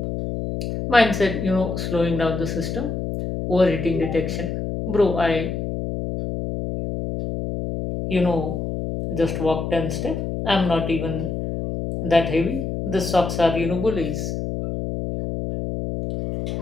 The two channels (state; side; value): noise; left; hum, 3 dB below the sound